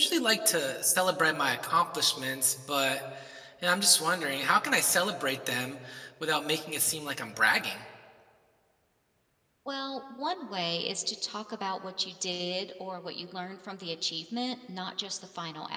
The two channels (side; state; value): both; identical; correlation 1.00